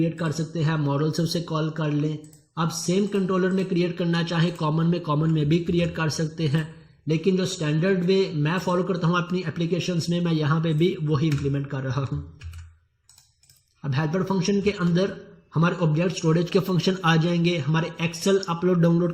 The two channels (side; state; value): both; identical; correlation 1.00